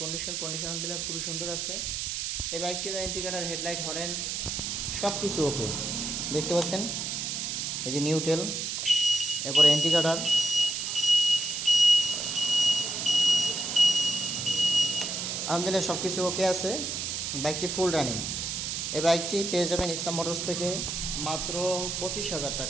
কন্ডিশন আলহামদুলিল্লাহ খুবই সুন্দর আছে। এই বাইকটির ইন্ডিকেটার, হেডলাইট, হরেন সব কিছু ওকে। দেখতে পাচ্ছেন এই যে নিউটেল, এরপরে ইন্ডিকেটার, আলহামদুলিল্লাহ সব কিছু ওকে আছে। বাইকটি ফুল রানিং। এই বাইকটি পেয়ে যাবেন ইসলাম মোটরস থেকে মাত্র 25,000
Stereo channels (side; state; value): right; noise; hiss, 3 dB below the sound